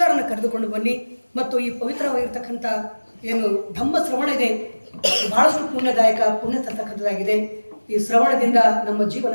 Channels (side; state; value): both; inverted; correlation -1.00